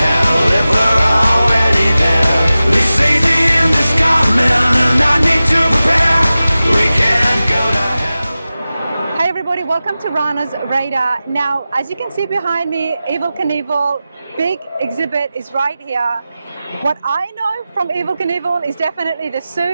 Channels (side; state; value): both; inverted; correlation -0.95